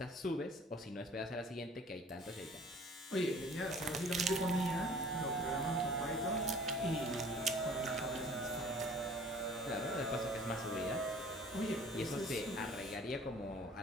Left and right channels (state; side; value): normal; both; correlation 0.50